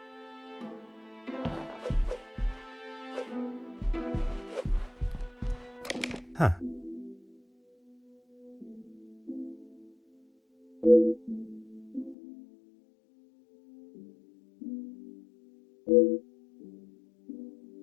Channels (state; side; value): drops out; right; at 12.2 s